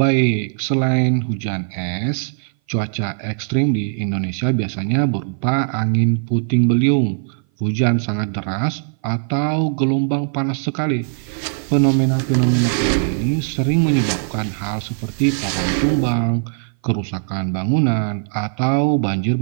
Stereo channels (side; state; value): left; silent; 58 dB below the other